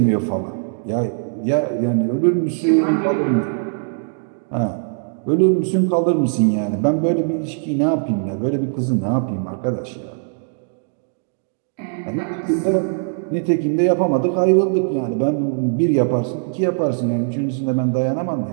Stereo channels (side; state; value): left; silent; digital silence